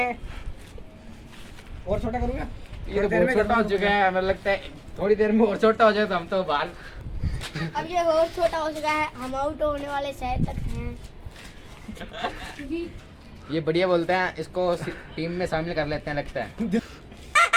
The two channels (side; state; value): both; identical; correlation 1.00